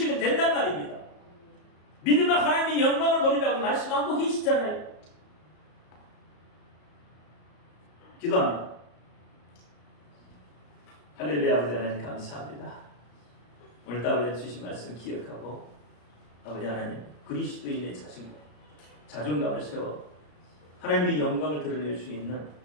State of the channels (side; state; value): right; late; 34 ms